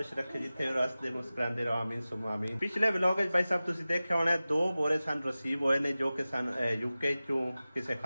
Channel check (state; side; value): inverted; both; correlation -0.96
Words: ਰੱਖੇ ਜਿੱਥੇ ਰਸਤੇ ਮੁਸਕਰਾਉਂਦੇ ਰਹੋ ਆਮੀਨ ਸੁਮ ਆਮੀਨ। ਪਿਛਲੇ ਵਲੌਗ ਵਿੱਚ ਭਾਈ ਸਾਹਿਬ ਤੁਸੀਂ ਦੇਖਿਆ ਹੋਣਾ 2 ਬੋਰੇ ਸਨ ਰਿਸੀਵ ਹੋਏ ਨੇ ਜੋ ਕਿ ਸਨ ਯੂਕੇ ਚੋਂ ਕਿਸੇ